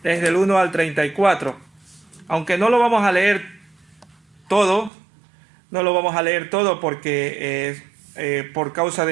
desde el 1 al 34. Aunque no lo vamos a leer todo, porque por causa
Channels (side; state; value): left; drops out; at 4.9 s